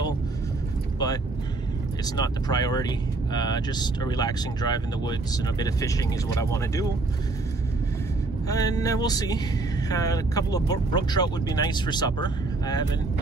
but it's not the priority. Just a relaxing drive in the woods and a bit of fishing is what I want to do, and we'll see. A couple of brook trout would be nice for supper. I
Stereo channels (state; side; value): quieter; left; 3.3 dB